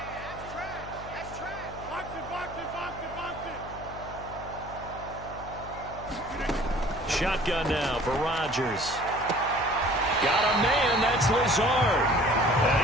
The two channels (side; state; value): left; noise; hum, 14 dB below the sound